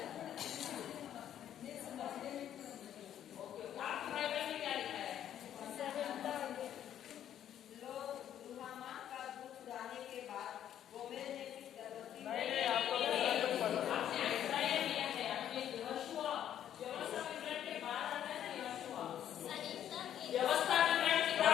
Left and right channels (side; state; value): right; quieter; 10.5 dB